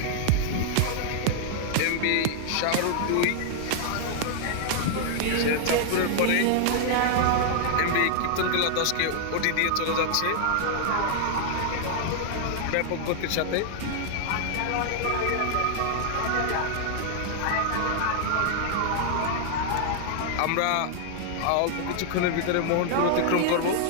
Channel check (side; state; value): both; different; correlation 0.00